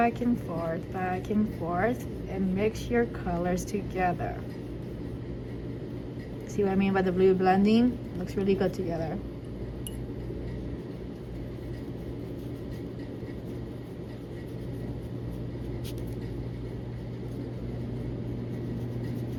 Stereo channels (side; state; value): both; identical; correlation 1.00